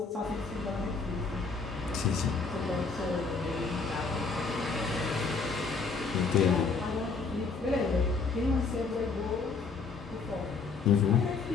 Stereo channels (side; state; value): right; quieter; 4.6 dB